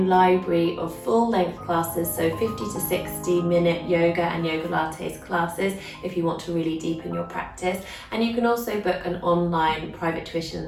library of full-length classes, so 50 to 60 minute yoga and yoga lattes classes if you want to really deepen your practice. And you can also book an online private tuition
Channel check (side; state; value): both; identical; correlation 1.00